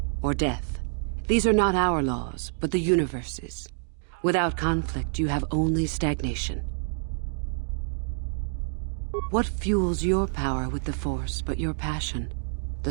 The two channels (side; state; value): left; silent; digital silence